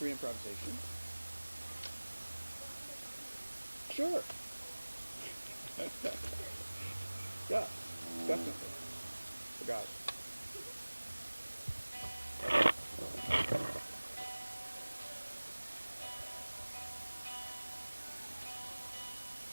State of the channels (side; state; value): both; inverted; correlation -1.00